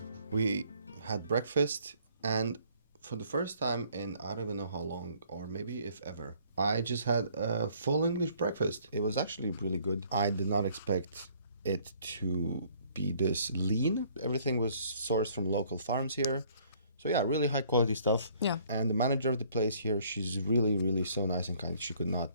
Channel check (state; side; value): inverted; both; correlation -0.61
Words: We had breakfast, and for the first time in I don't even know how long, or maybe if ever, I just had a full English breakfast. It was actually really good. I did not expect it to be this lean. Everything was sourced from local farms here. So yeah, really high quality stuff. Yeah. And the manager of the place here, she's really, really so nice and kind. She could not